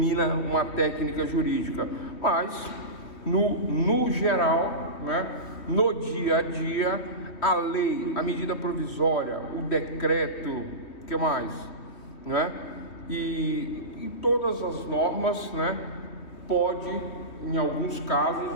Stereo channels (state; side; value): late; right; 3.2 ms